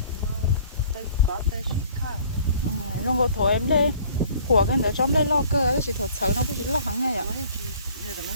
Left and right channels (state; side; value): inverted; both; correlation -0.53